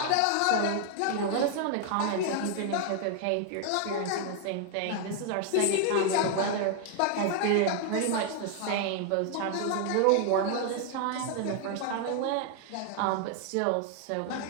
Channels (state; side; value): different; both; correlation 0.00